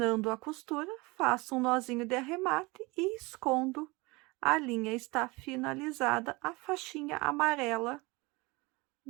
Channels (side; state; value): left; quieter; 24.5 dB